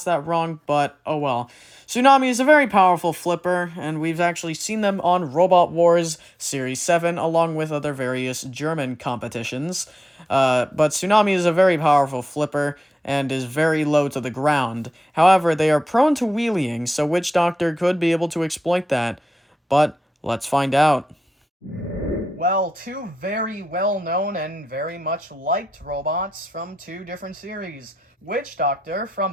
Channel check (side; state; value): both; normal; correlation 0.92